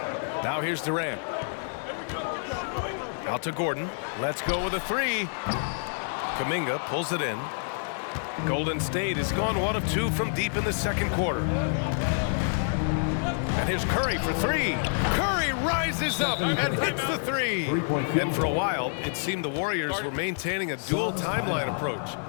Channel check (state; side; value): silent; right; 58 dB below the other